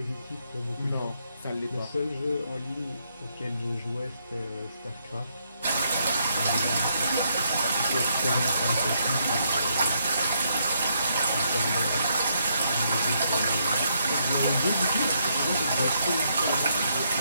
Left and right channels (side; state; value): both; inverted; correlation -0.76